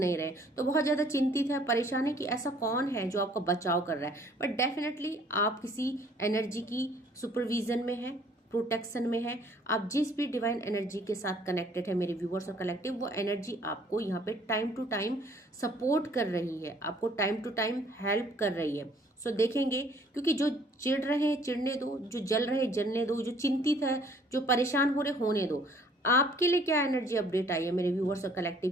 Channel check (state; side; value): normal; both; correlation 0.59